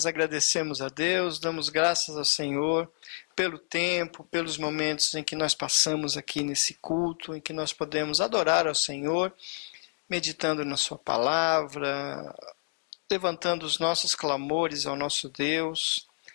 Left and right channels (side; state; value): right; silent; 59 dB below the other